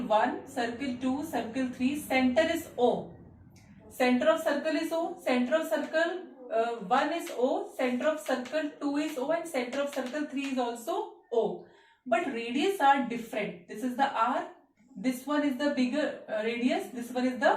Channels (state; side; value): identical; both; correlation 1.00